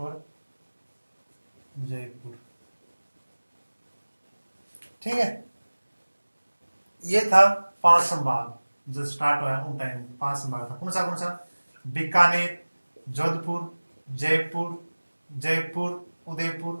जयपुर। ठीक है। ये था 5 संभाग जो स्टार्ट हुआ उन टाइम 5 संभाग था। कौन सा बीकानेर, जोधपुर, जयपुर,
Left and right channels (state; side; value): inverted; both; correlation -1.00